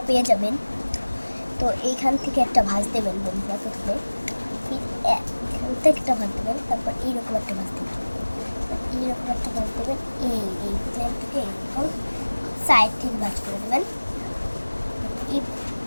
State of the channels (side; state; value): both; inverted; correlation -1.00